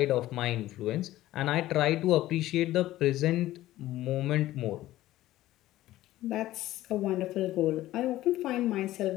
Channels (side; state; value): right; quieter; 15.3 dB